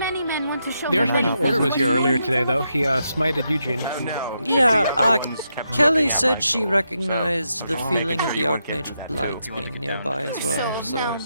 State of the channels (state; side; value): inverted; both; correlation -0.83